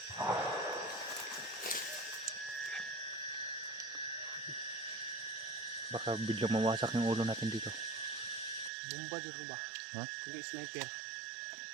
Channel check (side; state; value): left; drops out; at 8.7 s